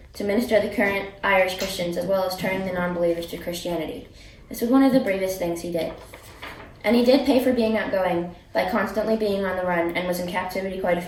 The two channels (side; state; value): both; identical; correlation 1.00